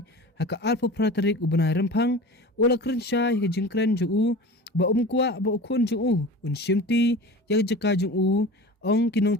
haka alfa pratarik u banai rempang ula kerensya hika jengkren je u ba kuwa ba ukun je u un shimti yak jeka je u ong kinong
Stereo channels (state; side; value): normal; both; correlation 0.36